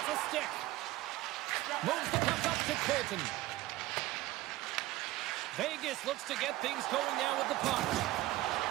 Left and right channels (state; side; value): quieter; left; 17.1 dB